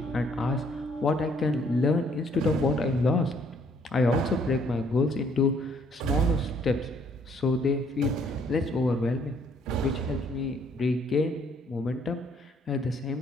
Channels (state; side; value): normal; both; correlation 0.65